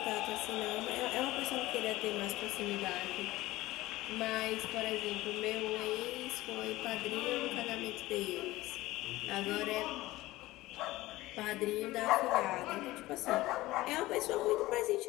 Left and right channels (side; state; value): right; quieter; 18.0 dB